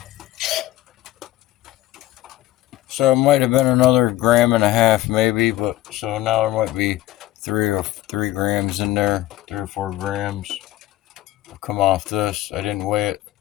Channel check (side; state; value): right; quieter; 15.3 dB